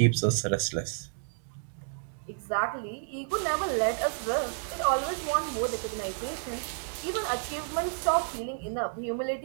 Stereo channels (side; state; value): left; silent; digital silence